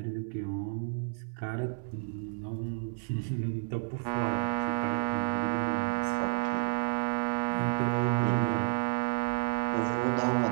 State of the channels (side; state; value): left; silent; 57 dB below the other